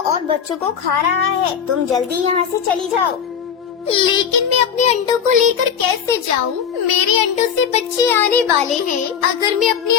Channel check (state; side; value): quieter; right; 7.7 dB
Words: और बच्चों को खा रहा है। तुम जल्दी यहाँ से चली जाओ। लेकिन मैं अपने अंडों को लेकर कैसे जाऊँ? मेरे अंडों से बच्चे आने वाले हैं। अगर मैं अपने